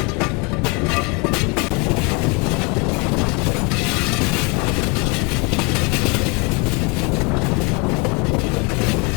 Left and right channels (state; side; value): quieter; right; 30.6 dB